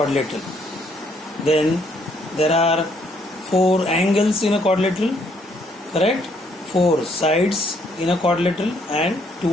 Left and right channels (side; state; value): both; normal; correlation 0.69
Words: then there are four angles in a quadrilateral, correct? Four sides in a quadrilateral and